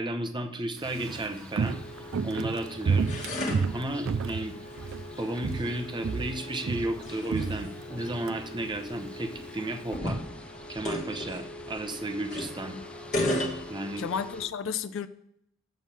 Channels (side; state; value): both; normal; correlation 0.65